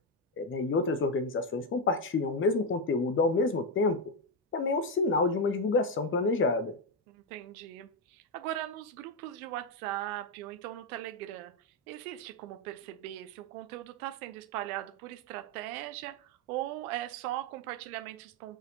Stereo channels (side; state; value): both; normal; correlation 0.07